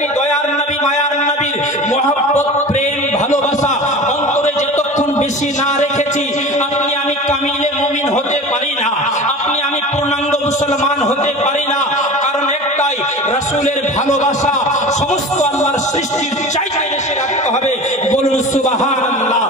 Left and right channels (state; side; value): normal; both; correlation 0.35